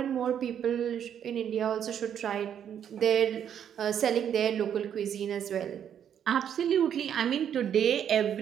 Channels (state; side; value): quieter; left; 9.0 dB